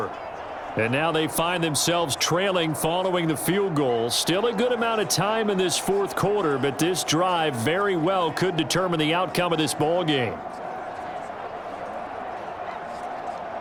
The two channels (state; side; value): identical; both; correlation 1.00